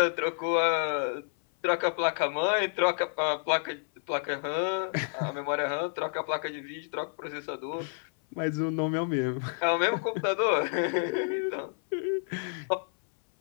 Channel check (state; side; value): silent; right; 58 dB below the other